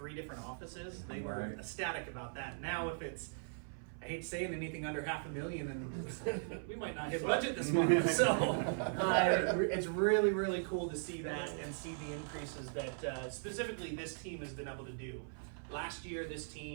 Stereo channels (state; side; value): silent; left; 52 dB below the other